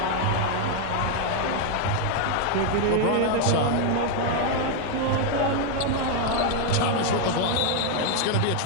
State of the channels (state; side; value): different; both; correlation 0.00